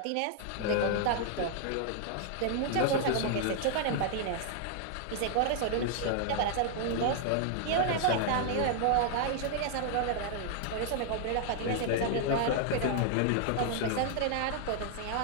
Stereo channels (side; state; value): both; different; correlation 0.00